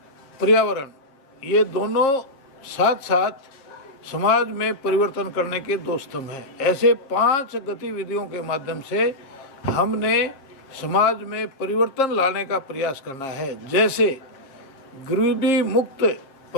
पर्यावरण, ये दोनों साथ साथ समाज में परिवर्तन करने के 2 स्तंभ हैं। ऐसे 5 गतिविधियों के माध्यम से हमने समाज में परिवर्तन लाने का प्रयास करना है। जैसे गरीबी मुक्त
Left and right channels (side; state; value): right; late; 7.4 ms